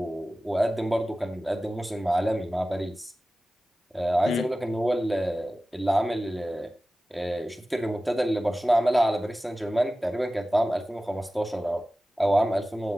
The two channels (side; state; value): both; normal; correlation 0.96